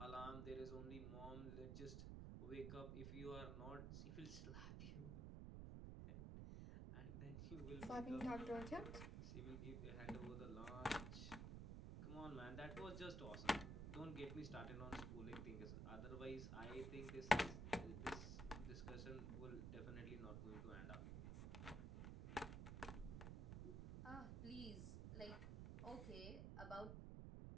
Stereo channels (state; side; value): noise; right; rumble, 3 dB below the sound